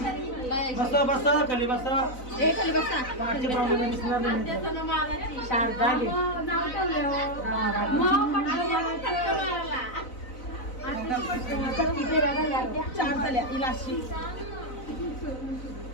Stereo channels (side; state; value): right; late; 4.0 ms